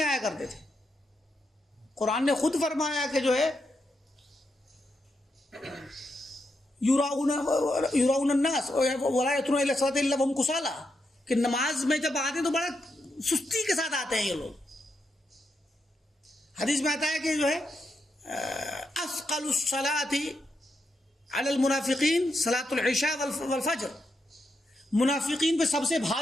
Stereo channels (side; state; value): both; normal; correlation 0.83